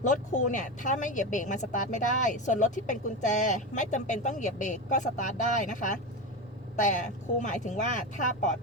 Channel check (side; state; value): both; normal; correlation 0.19